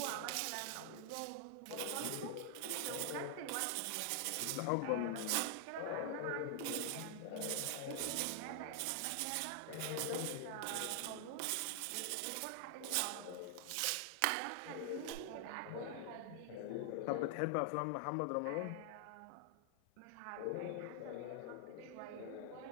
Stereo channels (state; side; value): different; both; correlation 0.00